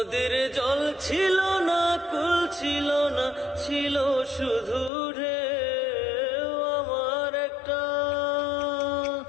জল ছিল না, কুল ছিল না, ছিল শুধু ঢেউ।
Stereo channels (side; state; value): right; drops out; at 4.9 s